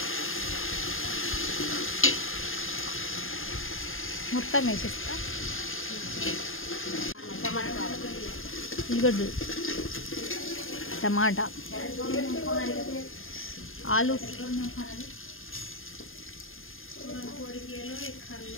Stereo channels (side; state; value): right; late; 0.60 ms